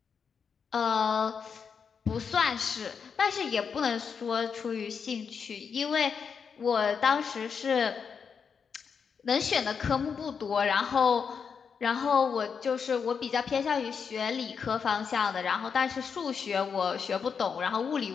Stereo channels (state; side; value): quieter; right; 6.3 dB